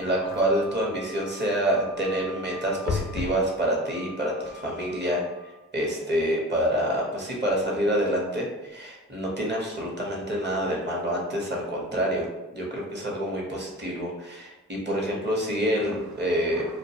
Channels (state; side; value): normal; both; correlation 0.35